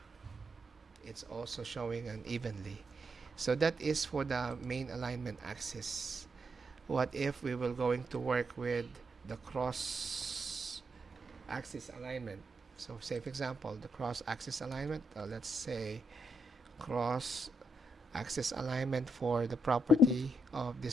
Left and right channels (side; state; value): both; normal; correlation 0.80